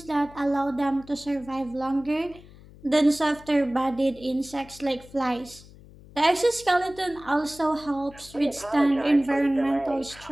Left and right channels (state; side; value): noise; left; hum, 21 dB below the sound